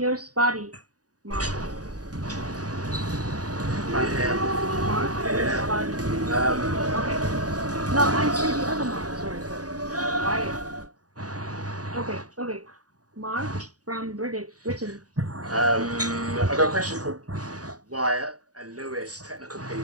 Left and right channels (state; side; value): late; left; 0.68 ms